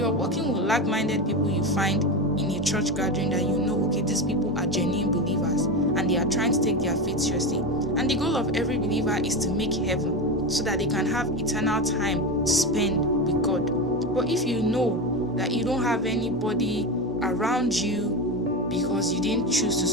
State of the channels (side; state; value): both; normal; correlation 0.19